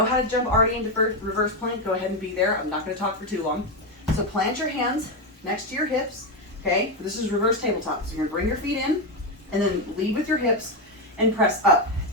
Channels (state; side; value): normal; both; correlation 0.08